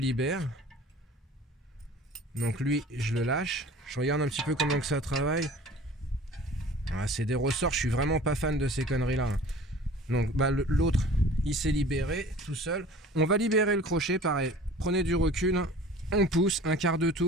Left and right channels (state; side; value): normal; both; correlation 0.44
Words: Donc lui, je le lâche. Je regarde un petit peu comment que ça travaille. Ah, c'est des ressorts, je suis vraiment pas fan de ces conneries là. Donc bah, l'autre il s'est libéré tout seul. On va libérer le crochet, pareil. Prenez du recul, on pousse un quart de